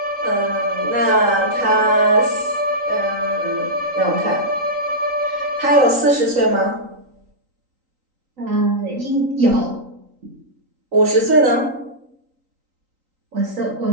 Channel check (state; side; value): late; left; 3.8 ms